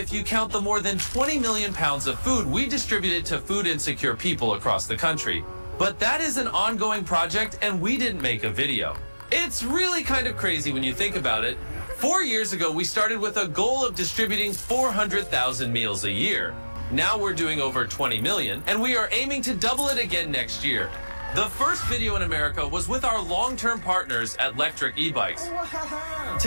you count the more than 20 million pounds of food we distributed to food insecure people across the country. But that is an ongoing project, and we didn't make a video. It's really kind of crazy when you think about it. 4 years ago, we started with a goal of distributing 400,000 meals a year. Now we're doing over 20 million, and we are aiming to double it again next year. The first video in America was with our long-term partners at Electric E-Bikes.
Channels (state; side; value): inverted; both; correlation -1.00